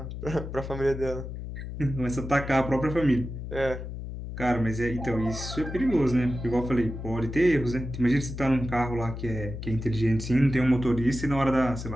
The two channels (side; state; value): left; noise; hum, 8 dB below the sound